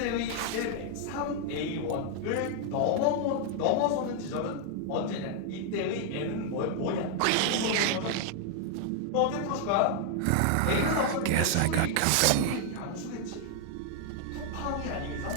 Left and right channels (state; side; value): different; both; correlation 0.00